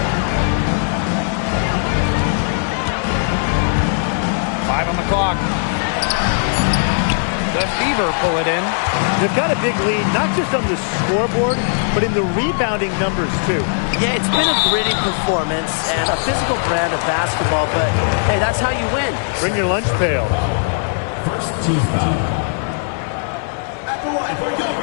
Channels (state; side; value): silent; right; digital silence